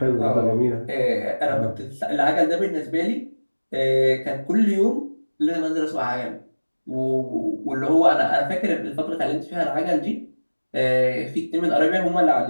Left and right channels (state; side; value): inverted; both; correlation -1.00